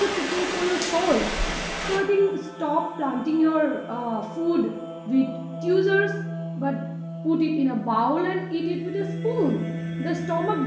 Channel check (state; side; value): identical; both; correlation 1.00